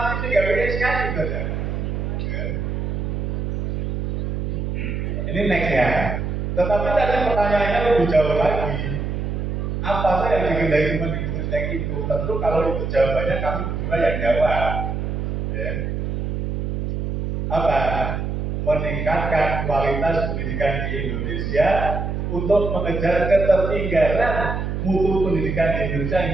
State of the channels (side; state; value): right; noise; hum, 2 dB below the sound